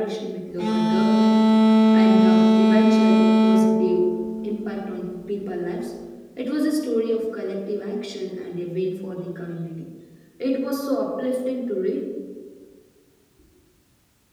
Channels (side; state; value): both; identical; correlation 1.00